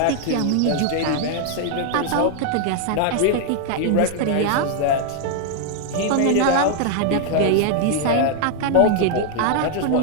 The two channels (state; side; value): different; both; correlation 0.00